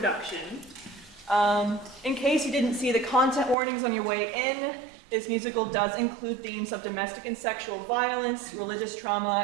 In case you didn't see the content warnings on your way in, this musical does include themes of domestic and sexual violence, religious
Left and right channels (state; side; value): drops out; left; at 3.6 s